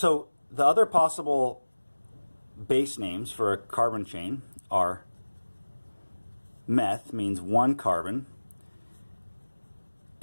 the other possible base names for a carbon chain are meth, means 1 carbon,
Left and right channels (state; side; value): inverted; both; correlation -1.00